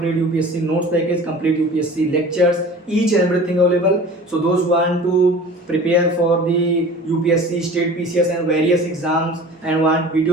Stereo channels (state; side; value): normal; both; correlation 0.41